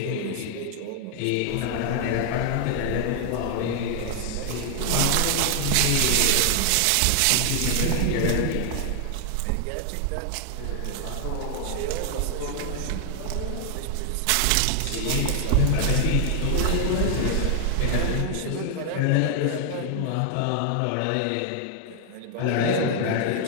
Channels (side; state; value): both; different; correlation 0.00